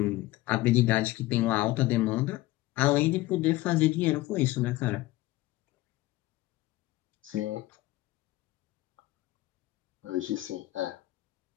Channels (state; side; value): quieter; right; 17.9 dB